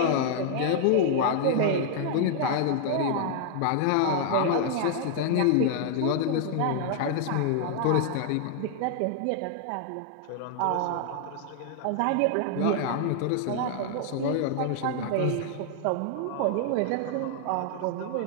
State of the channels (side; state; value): both; different; correlation 0.00